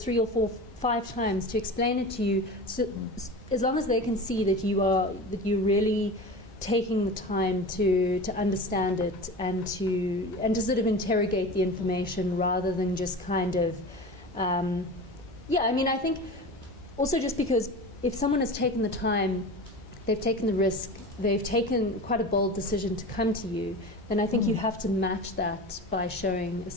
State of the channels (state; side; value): normal; both; correlation 0.32